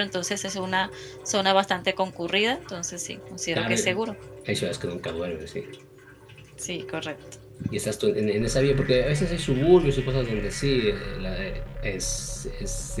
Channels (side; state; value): both; identical; correlation 1.00